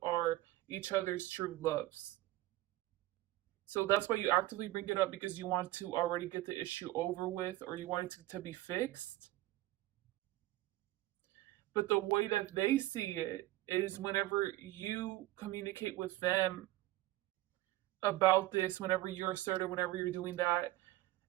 are each other's true loves. So that's why you actively bring it up, because you want to already get the issue over with, or you want it to be fixed. But the way that they see it is whenever you communicate with them about this, whenever you're assertive, whenever you're doing that,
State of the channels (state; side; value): quieter; left; 17.0 dB